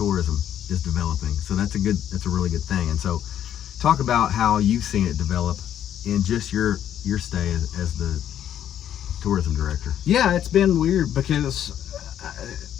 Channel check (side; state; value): right; quieter; 10.4 dB